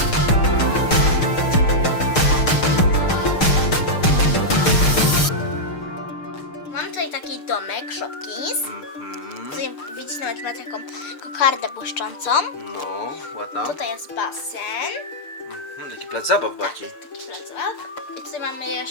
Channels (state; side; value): late; right; 6.5 ms